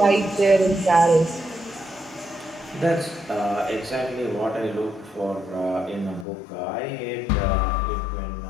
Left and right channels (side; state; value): right; drops out; at 6.2 s